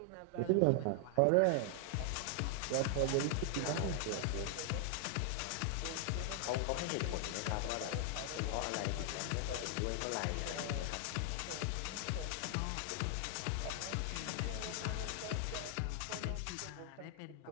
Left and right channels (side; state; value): both; different; correlation 0.00